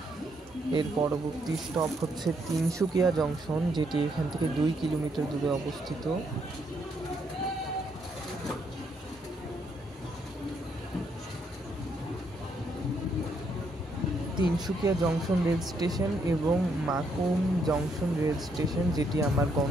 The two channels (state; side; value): normal; both; correlation 0.74